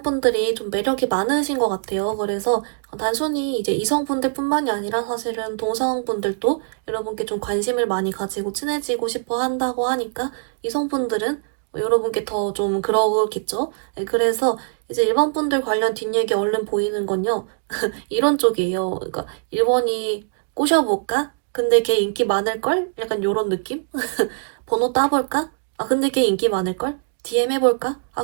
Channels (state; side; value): silent; left; digital silence